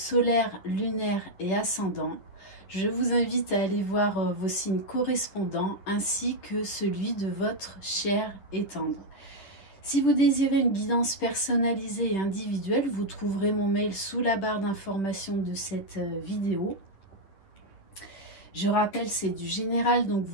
lunaire et ascendant. Je vous invite à aller voir vos signes correspondants ainsi que celui de votre cher et tendre. Si vous désirez une guidance personnalisée et individuelle, vous trouverez mon mail sous la barre d'information de cette vidéo. Je rappelle, c'est du général, donc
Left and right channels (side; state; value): right; late; 10 ms